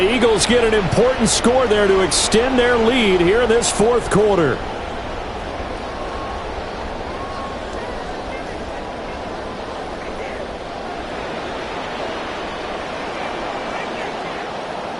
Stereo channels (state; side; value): identical; both; correlation 1.00